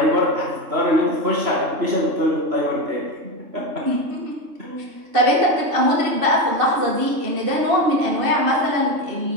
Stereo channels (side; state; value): left; late; 3.2 ms